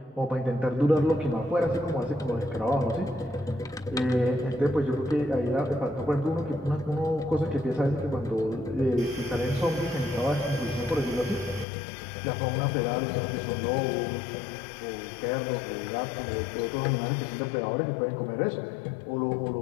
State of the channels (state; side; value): drops out; right; at 11.7 s